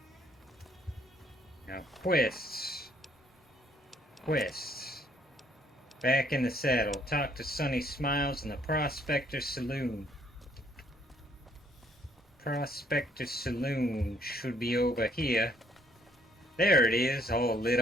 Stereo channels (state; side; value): normal; both; correlation 0.66